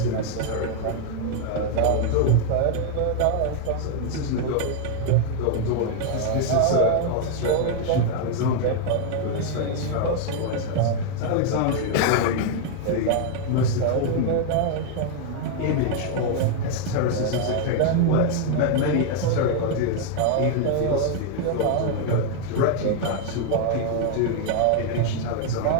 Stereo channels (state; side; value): different; both; correlation 0.00